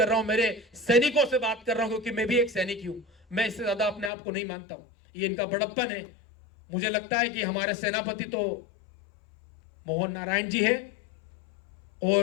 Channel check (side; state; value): right; drops out; at 4.1 s